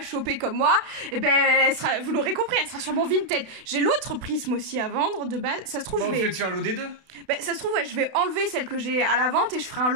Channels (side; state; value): left; late; 32 ms